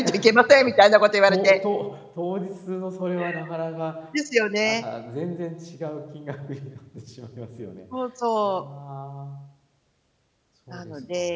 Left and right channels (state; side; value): identical; both; correlation 1.00